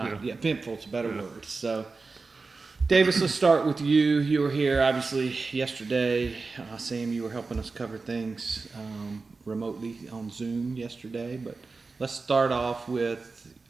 Yeah. Eventful is a better word. So, Davis, let's start with you. You were here obviously yesterday. Sam, you were helping us cover things remotely on Zoom yesterday. But let's start off with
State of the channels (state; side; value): quieter; left; 4.1 dB